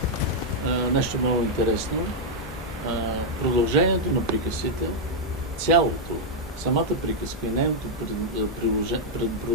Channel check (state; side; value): normal; both; correlation -0.03